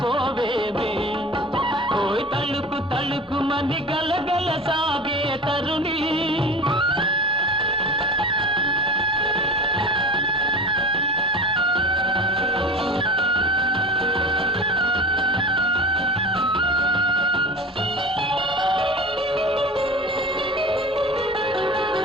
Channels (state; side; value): normal; both; correlation 0.34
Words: ఓయ్ తలుకు తలుకు మని గలగల సాగే తరుణి